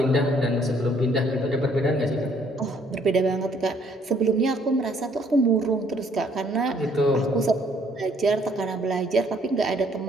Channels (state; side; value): normal; both; correlation 0.64